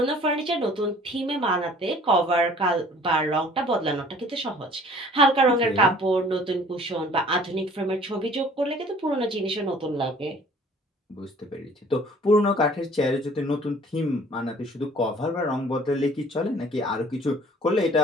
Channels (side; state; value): both; normal; correlation 0.52